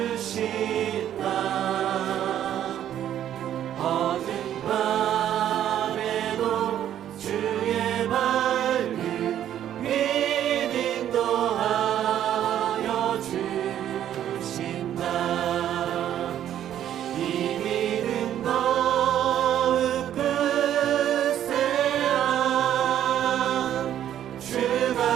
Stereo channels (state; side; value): quieter; left; 10.9 dB